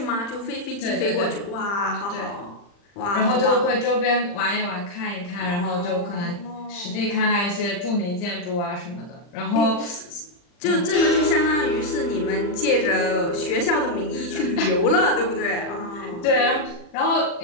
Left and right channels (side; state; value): right; late; 40 ms